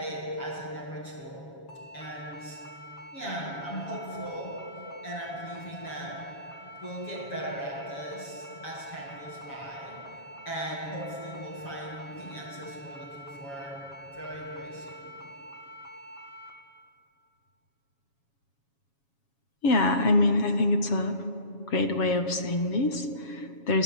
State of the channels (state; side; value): late; right; 7.2 ms